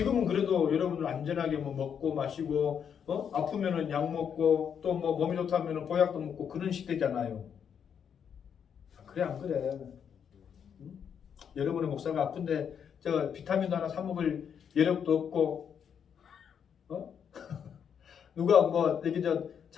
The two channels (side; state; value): right; quieter; 7.8 dB